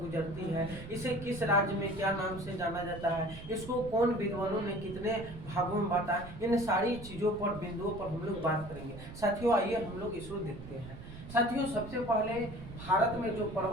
है, इसे किस राज्य में क्या नाम से जाना जाता है, इसको कौन विद्वानों ने कितने भागों में बांटा, इन सारी चीज़ों पर, बिंदुओं पर हम लोग बात करेंगे। साथियों, आइए हम लोग इसको देखते हैं। साथियों, सबसे पहले भारत में जो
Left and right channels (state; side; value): noise; right; rumble, 13 dB below the sound